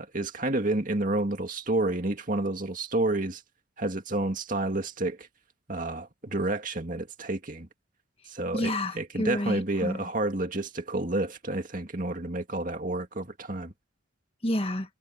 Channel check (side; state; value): both; normal; correlation 0.44